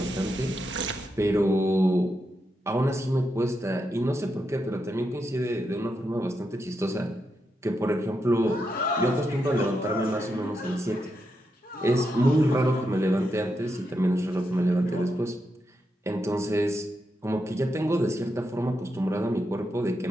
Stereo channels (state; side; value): normal; both; correlation 0.84